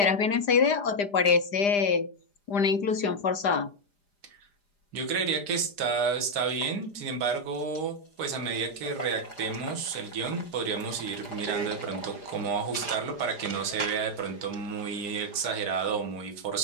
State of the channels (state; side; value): late; right; 5.0 ms